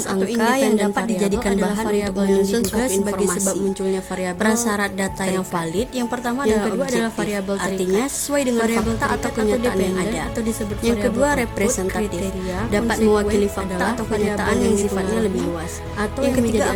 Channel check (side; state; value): both; identical; correlation 1.00